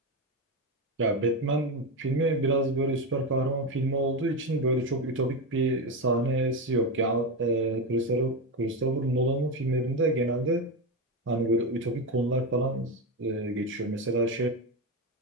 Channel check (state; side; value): normal; both; correlation 0.13